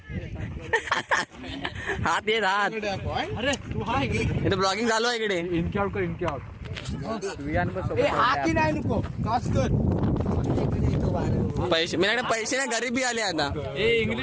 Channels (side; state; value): both; identical; correlation 1.00